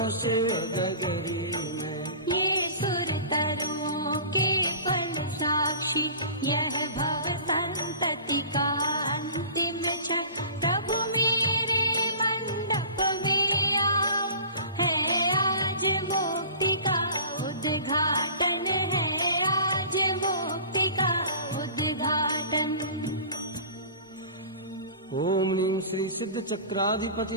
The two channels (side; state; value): both; inverted; correlation -0.40